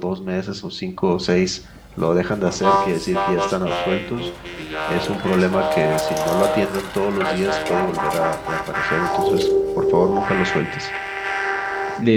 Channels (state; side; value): identical; both; correlation 1.00